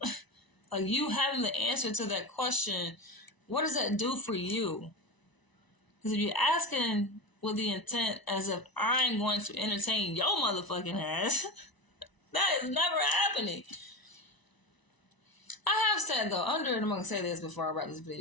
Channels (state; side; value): late; right; 1.0 ms